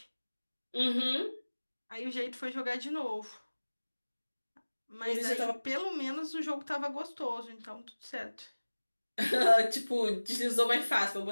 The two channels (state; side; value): inverted; both; correlation -1.00